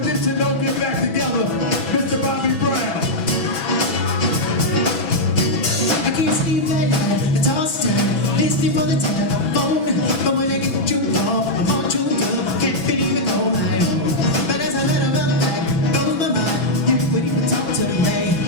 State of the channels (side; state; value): right; late; 6.1 ms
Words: this and don't get back together, Mr. Bobby Brown. I can't sleep at night, I toss and turn, listening for the telephone. But when I get the jump off, I'm all chewed up, can't believe it all night long. But as I let her run back, blows my mind, you wouldn't even talk to me.